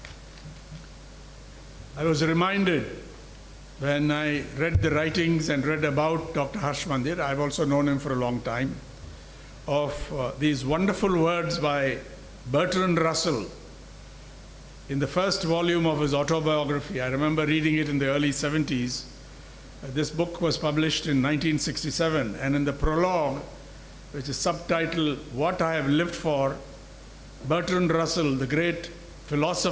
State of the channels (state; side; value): identical; both; correlation 1.00